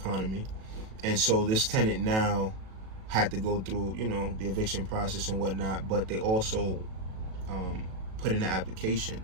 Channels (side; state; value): left; late; 37 ms